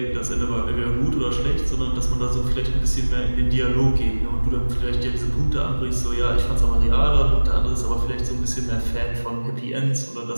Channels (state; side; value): inverted; both; correlation -1.00